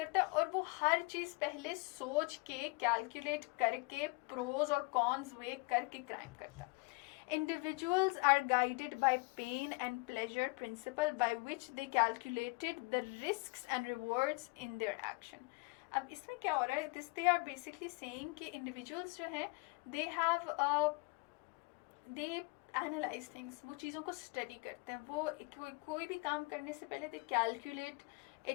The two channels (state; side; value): quieter; right; 28.7 dB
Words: है, और वो हर चीज़ पहले सोच के कैलकुलेट करके प्रोज और कॉन्स वे करके क्राइम करता है. Individuals are guided by pain and pleasure principle by which they calculated the risks and rewards in their action. अब इसमें क्या हो रहा है? This they are basically saying कि इंडिविजुअल्स जो हैं they have they analyse things, वो चीज़ों को स्टडी करते हैं, वो कोई भी काम करने से पहले दे calculate